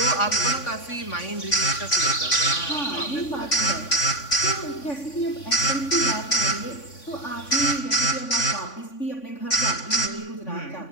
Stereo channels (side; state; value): right; late; 3.5 ms